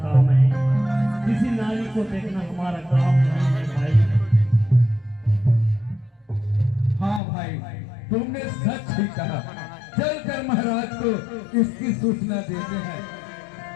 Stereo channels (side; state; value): right; drops out; at 7.2 s